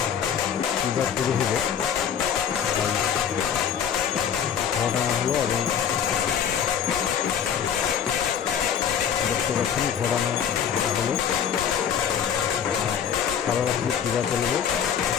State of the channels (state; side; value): quieter; right; 8.3 dB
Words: হলো এবং দেখতে পাচ্ছেন ঘোরানো হলো সারা রাত্রি পূজা চলবে